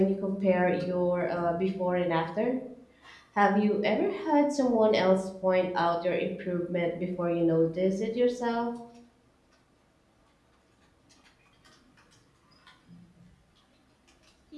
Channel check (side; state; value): both; identical; correlation 1.00